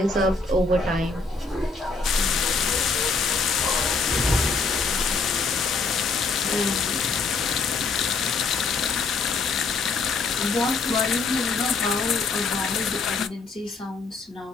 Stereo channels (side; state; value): right; quieter; 4.2 dB